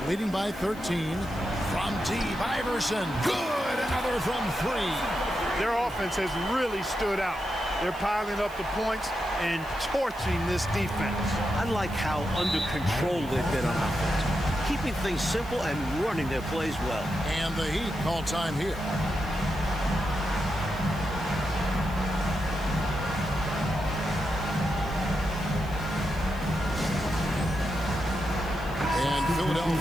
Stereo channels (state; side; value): noise; right; hiss, 22 dB below the sound